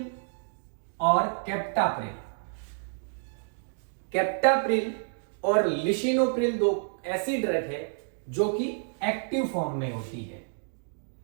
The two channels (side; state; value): left; silent; digital silence